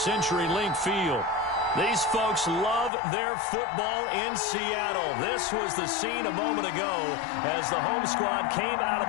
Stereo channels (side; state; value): right; drops out; at 2.9 s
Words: Field. These folks love their football in Seattle. This was the scene a moment ago as the home squad came out of